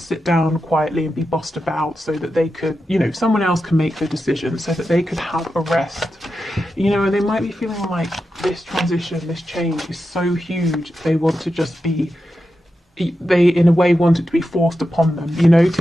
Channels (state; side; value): normal; both; correlation 0.90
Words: sit down quietly and be bossed about so that they could, you know, someone else can make the decision so that they could have a rest. You know, and they might be feeling like this transition, this change is so huge, they want to just be, they in a way want it to be forced upon them, you know,